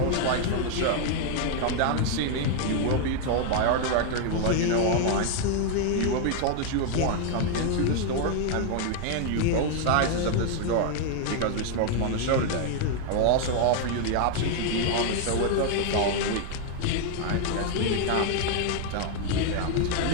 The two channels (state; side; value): different; both; correlation 0.00